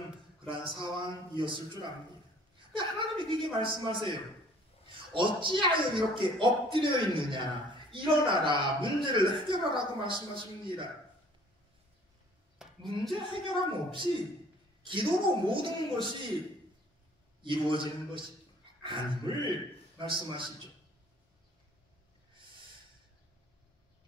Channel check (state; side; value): normal; both; correlation 0.55